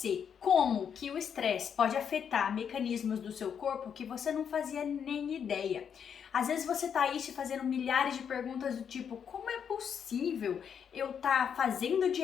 como que o estresse pode afetar mecanismos do seu corpo que você não fazia nem ideia. Às vezes você tá aí te fazendo milhares de perguntas do tipo, como é possível eu tá fazendo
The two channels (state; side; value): quieter; right; 7.7 dB